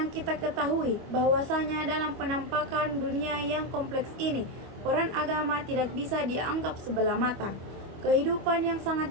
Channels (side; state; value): left; late; 25 ms